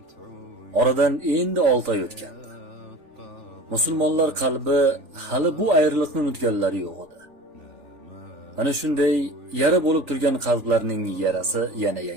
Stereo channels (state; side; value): late; left; 3.4 ms